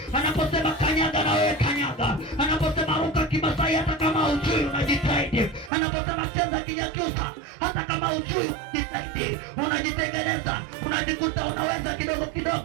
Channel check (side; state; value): left; drops out; at 5.7 s